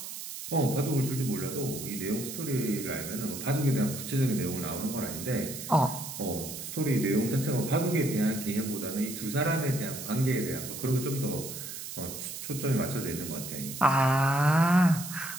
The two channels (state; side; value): noise; right; hiss, 9 dB below the sound